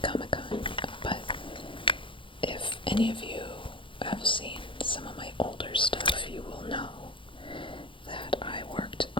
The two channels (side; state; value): right; late; 0.25 ms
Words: Comic-Con, but if any of you have seen some of my older stuff, you will know that I worked